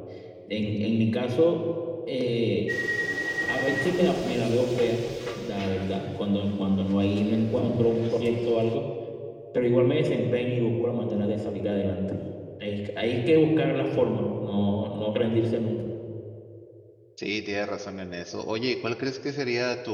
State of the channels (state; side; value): identical; both; correlation 1.00